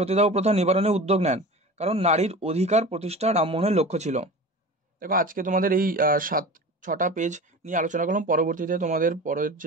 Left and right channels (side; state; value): both; normal; correlation 0.34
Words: প্রথা নিবারণে উদ্যোগ নেন কারণ নারীর অধিকার প্রতিষ্ঠা রামমোহনের লক্ষ্য ছিল। দেখো আজকে তোমাদের এই 7-6টা পেজ নিয়ে আলোচনা করলাম, পরবর্তীতে তোমাদের পরের